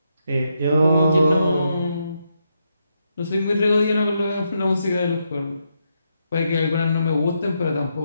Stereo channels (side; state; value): both; inverted; correlation -0.81